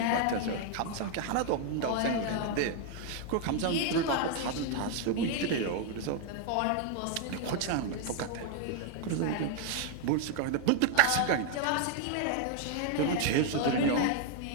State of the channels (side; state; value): both; different; correlation 0.00